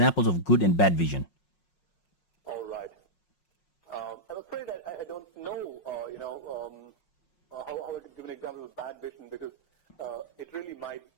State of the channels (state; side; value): late; right; 5.5 ms